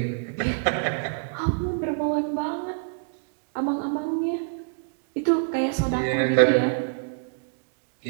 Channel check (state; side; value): silent; left; digital silence